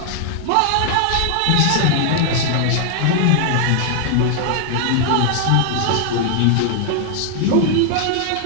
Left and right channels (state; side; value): different; both; correlation 0.00